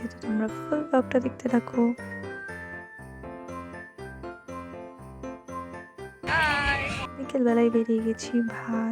তো তোমরা ফুল ব্লগটা দেখতে থাকো। বিকেলবেলায় বেরিয়ে গেছি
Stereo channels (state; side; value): identical; both; correlation 1.00